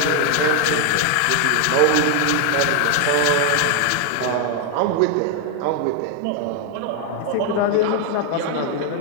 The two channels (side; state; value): both; different; correlation 0.00